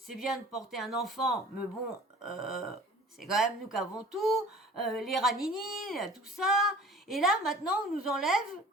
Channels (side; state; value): both; normal; correlation 0.46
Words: bien de porter un enfant, mais bon, c'est quand même nous qui avons tout, les ranini, tout ça. Et là, maintenant, on nous enlève